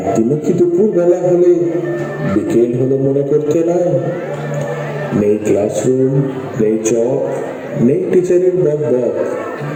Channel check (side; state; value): both; identical; correlation 1.00